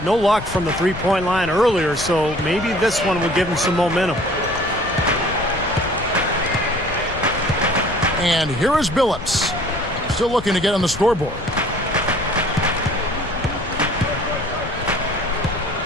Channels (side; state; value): left; noise; rumble, 11 dB below the sound